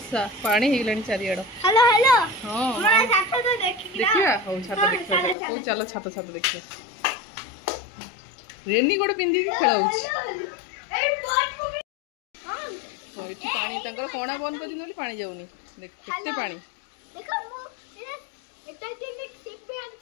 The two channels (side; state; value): right; drops out; at 5.4 s